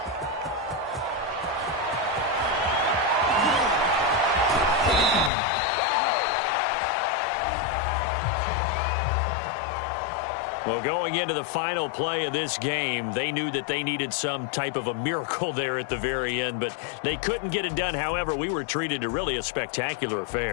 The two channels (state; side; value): drops out; right; at 5.3 s